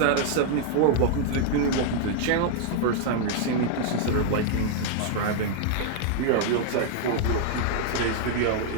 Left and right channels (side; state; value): both; different; correlation -0.01